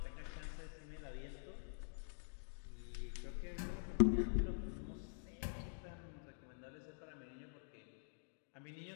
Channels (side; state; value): right; silent; digital silence